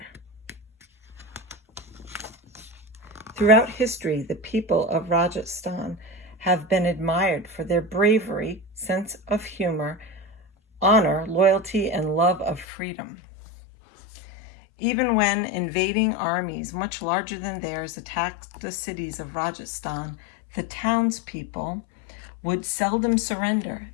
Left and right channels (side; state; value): right; drops out; at 12.7 s